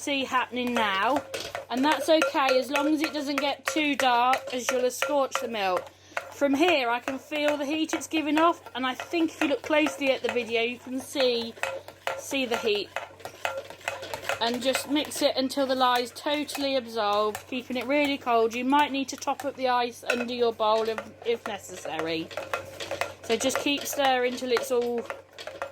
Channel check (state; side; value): identical; both; correlation 1.00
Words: happening now, and that's okay as long as it doesn't get too dark, as you'll have scorched the milk. From here I can feel the heat it's giving off, and I think if you look closely at the video you can see the heat. And just mix it until the lye is totally absorbed, keeping it really cold. You might need to top up the ice under your bowl if necessary. So just keep stirring till it's all